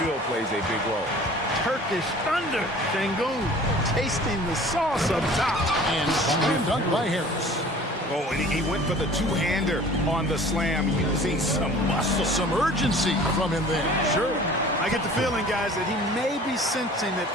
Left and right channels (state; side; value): normal; both; correlation 0.46